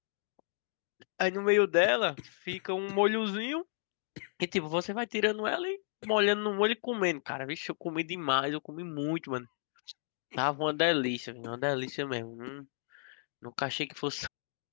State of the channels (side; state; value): right; silent; digital silence